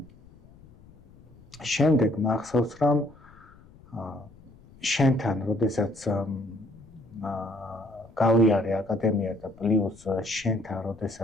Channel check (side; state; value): left; noise; rumble, 24 dB below the sound